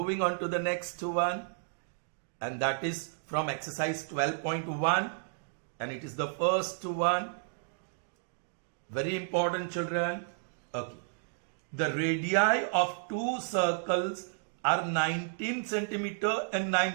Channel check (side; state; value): left; silent; digital silence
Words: on to the next one, and that is from exercise 12.1, and it is the first one. Very important, children. Okay. The radii of two circles are 19 centimeter and